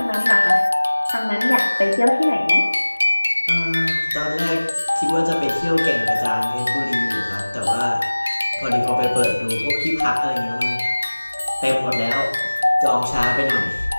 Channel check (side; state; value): both; inverted; correlation -1.00